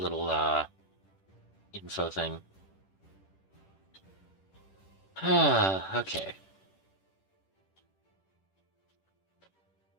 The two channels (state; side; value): late; right; 10 ms